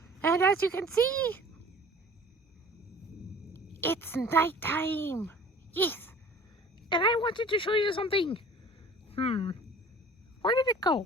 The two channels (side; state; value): both; normal; correlation 0.46